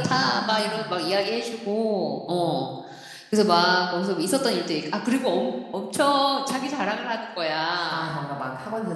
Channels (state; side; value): identical; both; correlation 1.00